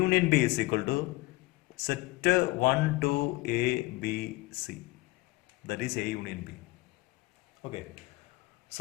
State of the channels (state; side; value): quieter; right; 21.2 dB